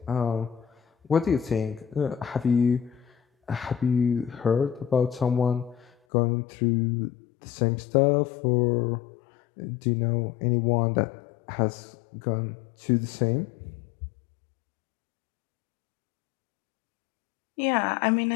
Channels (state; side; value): drops out; right; at 5.9 s